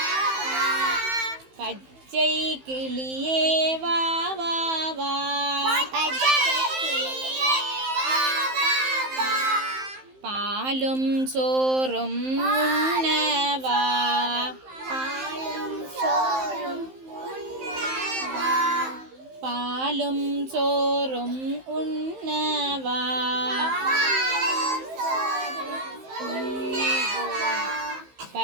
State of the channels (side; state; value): left; late; 15 ms